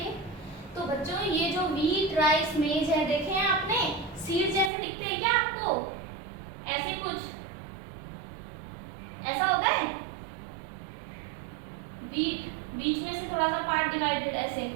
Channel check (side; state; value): left; drops out; at 4.7 s